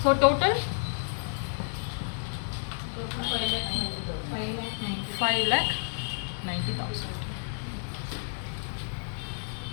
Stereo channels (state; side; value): silent; right; 58 dB below the other